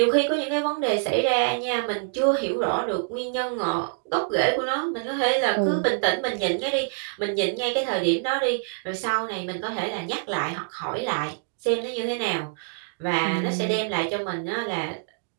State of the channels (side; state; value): left; silent; digital silence